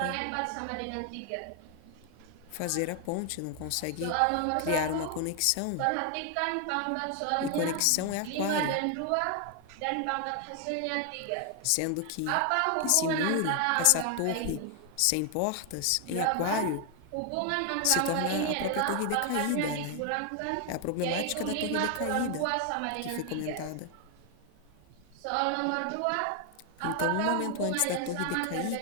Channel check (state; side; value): different; both; correlation 0.00